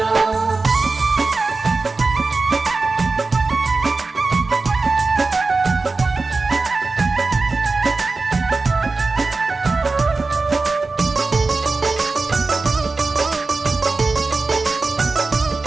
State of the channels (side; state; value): left; quieter; 3.8 dB